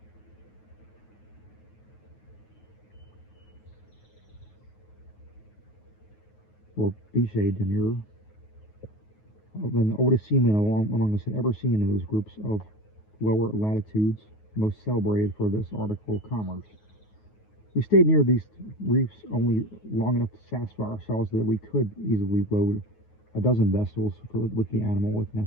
or Biche de Mir, than the oldest seamen among us had ever seen in those groups of lower latitudes, most celebrated for this article of commerce. We stayed near these reefs only long enough to satisfy ourselves that we could easily load a dozen vessels with the animal if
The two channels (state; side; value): late; right; 9.4 ms